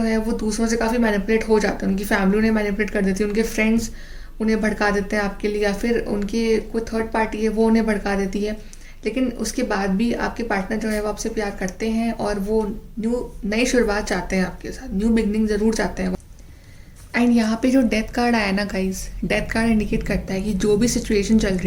है वो दूसरों से काफ़ी मैनिपुलेट हो जाते हैं, उनकी फैमिली उन्हें मैनिपुलेट कर देती है, उनके फ्रेंड्स उन्हें भड़का देते हैं आपके लिए, या फिर उनके कोई थर्ड पार्टी है वो उन्हें भड़का देती है। लेकिन उसके बाद भी आपके पार्टनर जो है वो आपसे प्यार करते हैं, और वो नई शुरुआत चाहते हैं आपके साथ, न्यू बिगनिंग ज़रूर चाहते हैं। एंड यहाँ पे जो डेथ कार्ड आया ना गाइस, डेथ कार्ड इंडिकेट करता है कि जो भी सिचुएशन चल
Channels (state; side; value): identical; both; correlation 1.00